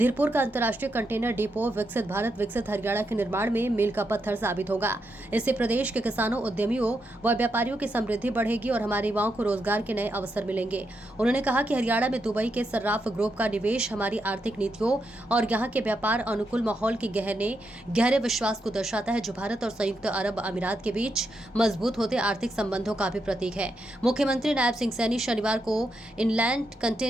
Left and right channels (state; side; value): normal; both; correlation 0.83